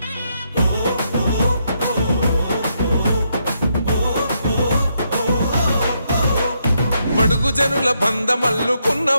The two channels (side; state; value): both; inverted; correlation -0.78